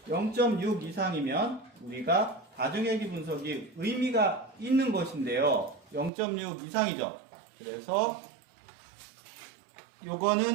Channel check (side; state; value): left; drops out; at 6.1 s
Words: 0.6 이상이면 우리가 다중회기 분석이 의미가 있는 것인데요. 0.6 이상이죠. 그래서